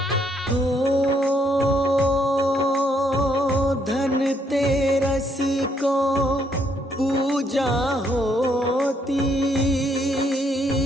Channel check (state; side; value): normal; both; correlation 0.71